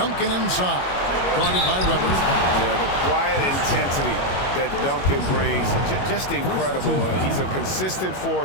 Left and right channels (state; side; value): late; right; 21 ms